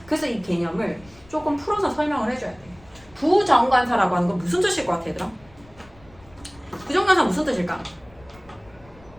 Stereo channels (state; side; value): noise; left; rumble, 25 dB below the sound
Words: 그래서 이 개념을 조금 풀어서 설명을 해줘야 돼. 부정관사라고 하는 건 무슨 뜻일 것 같아, 얘들아? 부정관사 무슨 뜻일까?